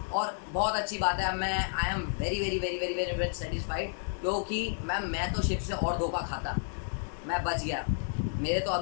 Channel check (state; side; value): silent; right; digital silence